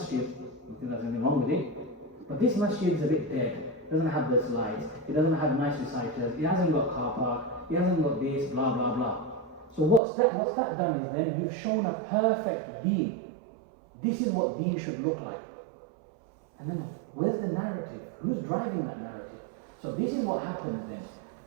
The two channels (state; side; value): drops out; left; at 10.0 s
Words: I think there's anything wrong with it, but this masjid is a bit dead. It doesn't have the slides, it doesn't have nice reciters, it hasn't got car park, it hasn't got this, blah, blah, blah. So what's that done is then you've shown a perfect deen. This is what deen should look like. And then where's the narrative? Who's driving that narrative? So this is what happens then.